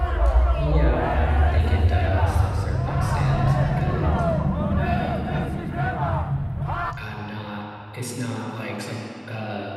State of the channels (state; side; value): identical; both; correlation 1.00